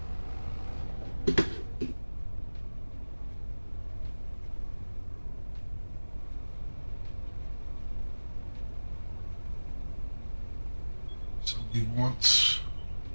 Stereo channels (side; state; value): both; inverted; correlation -1.00